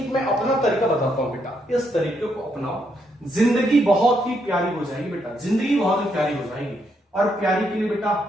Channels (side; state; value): both; normal; correlation 0.77